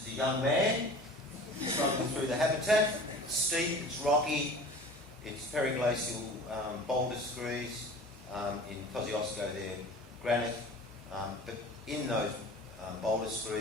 as a young man, struggling through the habitat. It's steep, it's rocky, it's periglacial boulder screes. In Kosciuszko they're granite, but in those boulder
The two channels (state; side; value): noise; left; hum, 23 dB below the sound